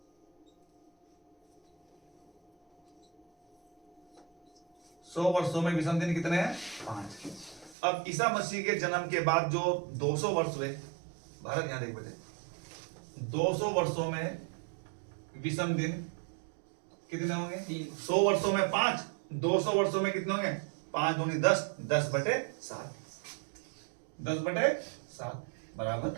वर्षों में विषम दिन कितने हैं? 5। अब ईसा मसीह के जन्म के बाद जो 200 वर्ष हुए, भारत यहां देख बेटे, 200 वर्षों में विषम दिन कितने होंगे? 100 वर्षों में 5, 200 वर्षों में कितने होंगे? 5 दूनी 10, 10/7, 10/7 बराबर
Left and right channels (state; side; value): drops out; left; at 7.8 s